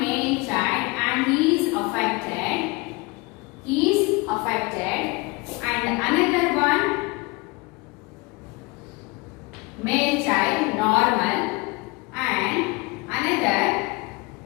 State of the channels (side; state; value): right; quieter; 25.2 dB